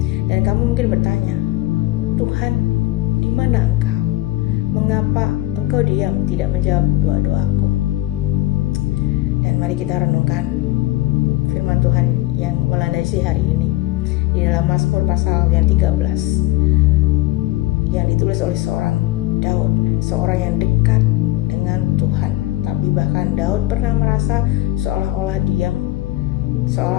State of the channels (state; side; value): quieter; right; 17.2 dB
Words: Dan kamu mungkin bertanya, Tuhan, di mana Engkau? Mengapa Engkau diam tidak menjawab doa-doaku? Dan mari kita renungkan firman Tuhan yang melandasi hari ini di dalam Mazmur pasal yang 13 yang ditulis oleh seorang Daud, seorang yang dekat dengan Tuhan. Tapi bahkan Daud pernah merasa seolah-olah